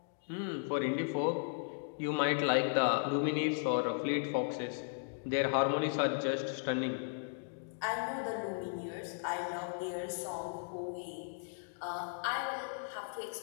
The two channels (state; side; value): silent; right; digital silence